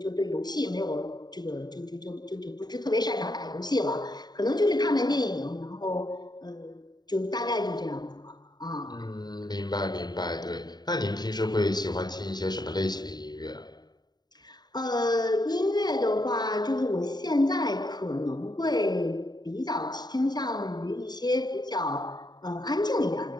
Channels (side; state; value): right; late; 0.20 ms